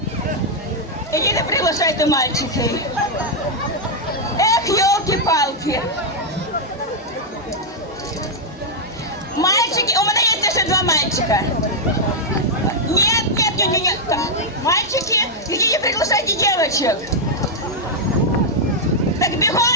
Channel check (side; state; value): both; normal; correlation -0.03